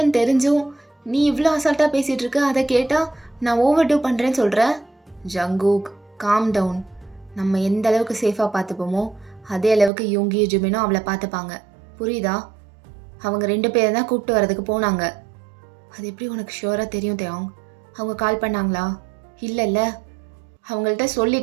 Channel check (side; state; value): left; drops out; at 9.9 s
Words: தெரிஞ்சும் நீ இவ்வளோ அசால்ட்டாக பேசிகிட்டு இருக்க. அதை கேட்டால் நான் ஓவர் டூ பண்ணுறேன்னு சொல்கிறேன். Jungkook, calm down. நம்ம எந்த அளவுக்கு சேஃபாக பார்த்துப்போமோ அதே அளவுக்கு யோங்கியும் ஜுமினும் அவளை பார்த்துப்பாங்க, புரியுதா? அவங்க 2 பேரை தான் கூப்பிட்டு வரதுக்கு போனாங்க. அது எப்படி உனக்கு ஷுவராக தெரியும் தியாங்? அவங்க கால் பண்ணாங்களா? இல்லைல்ல, அவங்கள்ட்ட